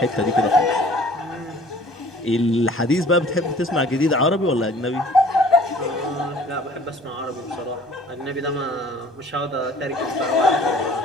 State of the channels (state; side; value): normal; both; correlation 0.52